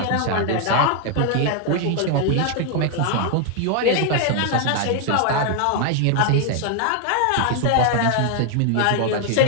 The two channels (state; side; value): different; both; correlation 0.00